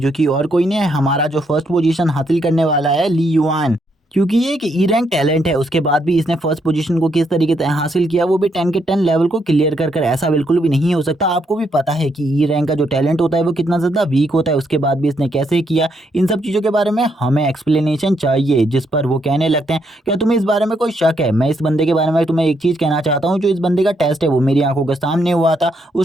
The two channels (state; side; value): normal; both; correlation 0.76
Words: कि और कोई नहीं है, हमारा जो फर्स्ट पोजीशन हासिल करने वाला है ली युआन, क्योंकि ये एक ई रैंक टैलेंट है। उसके बाद भी इसने फर्स्ट पोजीशन को किस तरीके से हासिल किया, वो भी 10 के 10 लेवल को क्लियर कर ऐसा बिल्कुल भी नहीं हो सकता। आपको भी पता है कि ई रैंक का जो टैलेंट होता है वो कितना ज़्यादा वीक होता है। उसके बाद भी इसने कैसे किया, इन सब चीज़ों के बारे में हमें एक्सप्लेनेशन चाहिए। जिस पर वो कहने लगते हैं, क्या तुम्हें इस बारे में कोई शक है। मैं इस बंदे के बारे में तुम्हें एक चीज़ कहना चाहता हूँ, जो इस बंदे का टेस्ट है वो मेरी आंखों के सामने हुआ था।